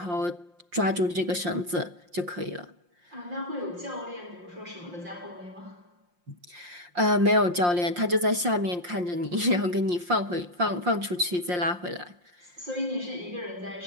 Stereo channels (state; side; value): late; left; 5.7 ms